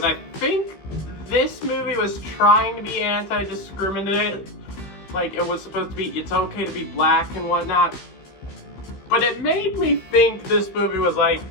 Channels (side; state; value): right; late; 15 ms